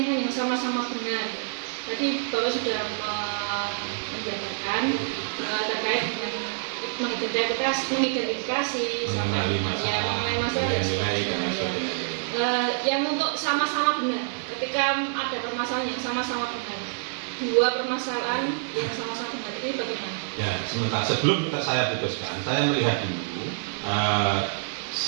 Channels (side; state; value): left; silent; digital silence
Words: yang sama-sama benar. Tadi Bapak sudah menjabarkan terkait dengan mengidentifikasi mengenai masalah dan yang untuk sama-sama benar. Ketika ada permasalahan yang sama-sama benar, dua permasalahan yang sama-sama benar, ini bagaimana? Ya, sementara sebelum saya putuskan, saya melihat dulu